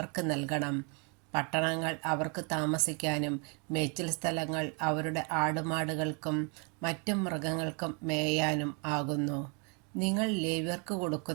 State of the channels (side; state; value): left; quieter; 34.8 dB